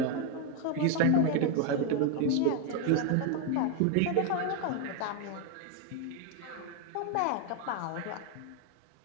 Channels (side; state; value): both; different; correlation 0.01